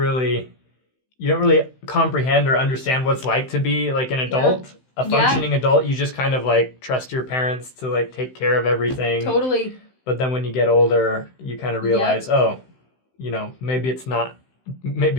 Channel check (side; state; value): right; late; 16 ms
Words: comprehend or understand what it's like to be like an adult, a functioning adult. You just kind of like trust your parents to like take care of everything. Totally. But then when you get older, you kind of realize, oh, you know, maybe